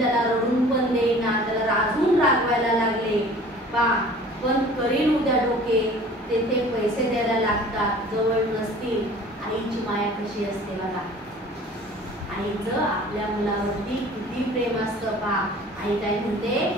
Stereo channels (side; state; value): both; normal; correlation 0.46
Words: रडून पण देईना, त्याला रागून रागवायला लागले. पण करील उद्या डोके, तेथे पैसे द्यायला लागतात, जवळ नसतील. आईची माया कशी असते बघा, आईचं आपल्या मुलावरती किती प्रेम असतं पहा. आई काय म्हणते,